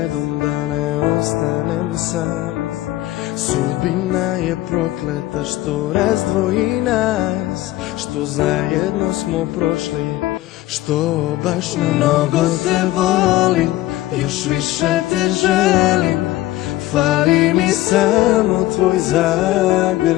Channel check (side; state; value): right; quieter; 16.3 dB